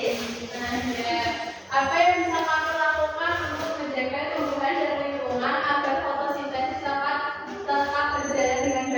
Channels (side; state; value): both; identical; correlation 1.00